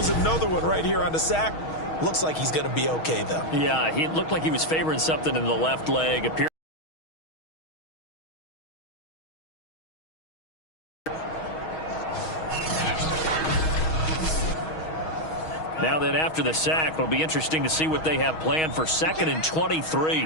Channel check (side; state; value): right; late; 6.3 ms